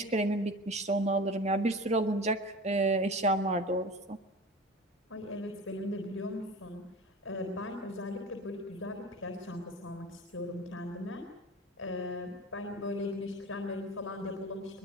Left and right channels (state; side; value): normal; both; correlation 0.35